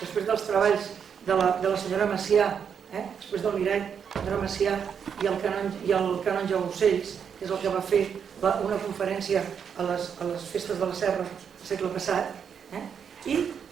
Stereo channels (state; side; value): quieter; left; 7.3 dB